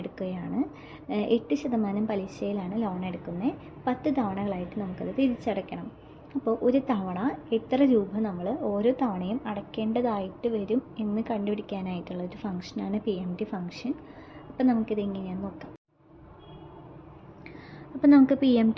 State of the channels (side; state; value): both; identical; correlation 1.00